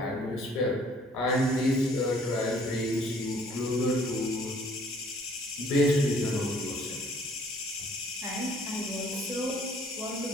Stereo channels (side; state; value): both; normal; correlation 0.59